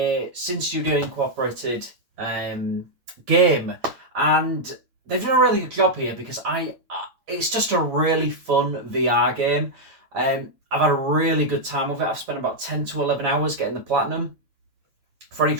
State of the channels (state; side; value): late; left; 8.9 ms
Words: Sin Studio Incorporated game, and they've done a really good job here because it's just a really fun VR game. I've had a really good time with it. I've spent about 10 to 11 hours getting the platinum. For any